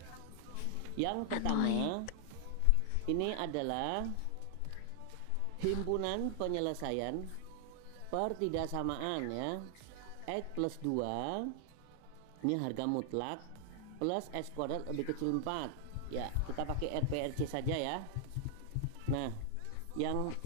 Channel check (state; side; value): different; both; correlation 0.00